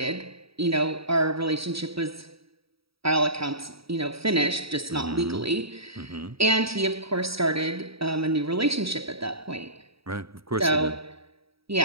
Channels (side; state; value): left; late; 0.76 ms